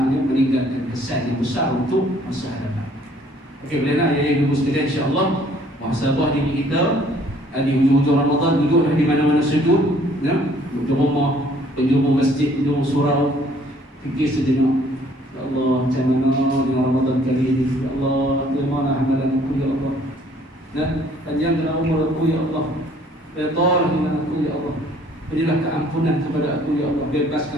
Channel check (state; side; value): normal; both; correlation 0.59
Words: meninggalkan kesan yang besar untuk masa hadapan. Okey, boleh nak ya ibu sekalian, insya-Allah muhasabah diri kita di hujung-hujung Ramadan, duduklah di mana-mana sujud, ya, di rumah, penjuru masjid, penjuru surau, fikir sejenak. Ya Allah, macam mana dengan Ramadan kali ini? Ya Allah, terima amalan aku ya Allah. Nah, panjangkan umur aku ya Allah. Redha dengan aku ya Allah. Berilah keampunan kepada aku ya Allah.